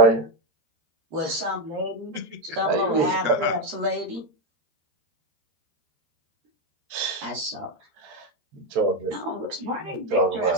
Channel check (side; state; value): left; late; 13 ms